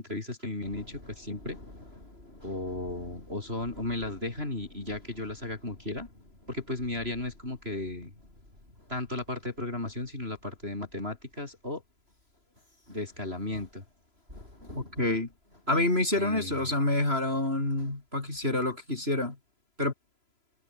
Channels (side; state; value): left; late; 3.0 ms